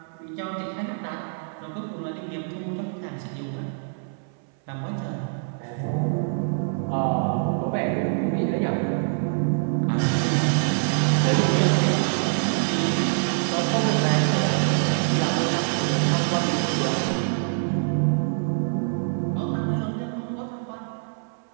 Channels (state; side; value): silent; left; 62 dB below the other